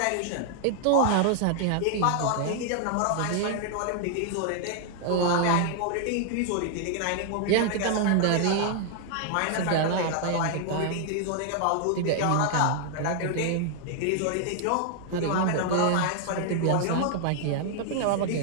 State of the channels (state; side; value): different; both; correlation 0.00